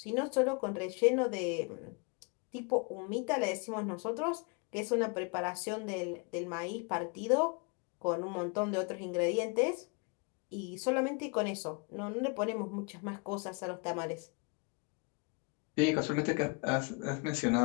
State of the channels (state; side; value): quieter; right; 32.7 dB